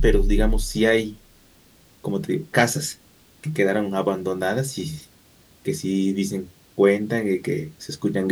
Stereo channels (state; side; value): identical; both; correlation 1.00